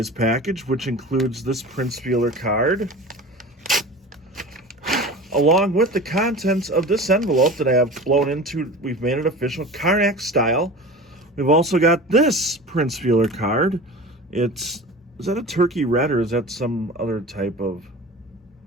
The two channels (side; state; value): both; normal; correlation 0.35